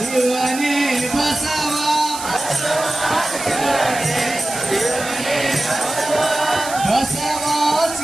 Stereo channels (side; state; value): right; noise; hiss, 9 dB below the sound